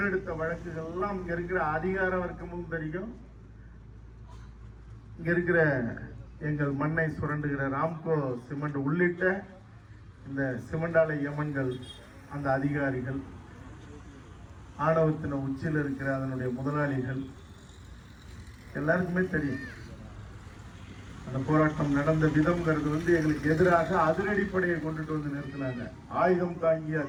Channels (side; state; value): both; identical; correlation 1.00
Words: வழக்குகள் எல்லாம் இங்க இருக்கிற அதிகார வர்க்கமும் தெரியும், இங்க இருக்கிற எங்கள் மண்ணை சுரண்டுகிற ராம்கோ சிமெண்ட் உள்ளிட்ட இந்த சிமெண்ட் ஆலை யமன்கள், அந்த அதிகாரிகள், ஆணவத்தின உச்சியில் இருக்கிற அதனுடைய முதலாளிகள் எல்லாருக்குமே தெரியும். அந்த போராட்டம் நடந்த விதம்ங்கிறது எங்களுக்கு எதிராக அதிரடிப்படையை கொண்டுட்டு வந்து நிறுத்தினாங்க. ஆயுதம் தாங்கிய